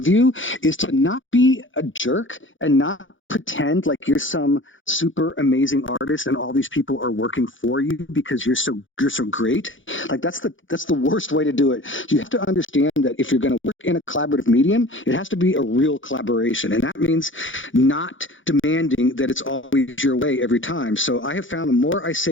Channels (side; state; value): right; late; 0.56 ms